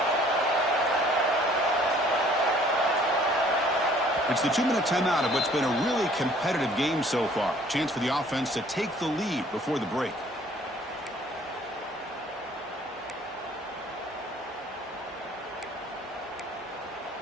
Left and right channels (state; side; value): normal; both; correlation 0.56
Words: It's the 2-minute timeout of what's been a really competitive game so far. Chance for the offense to take the lead before the break.